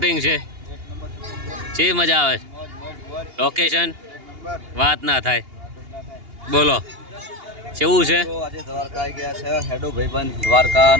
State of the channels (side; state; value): left; late; 2.8 ms